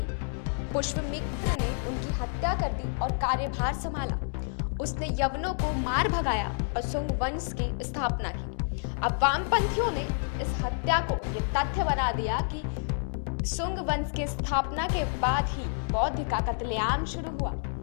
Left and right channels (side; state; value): right; silent; digital silence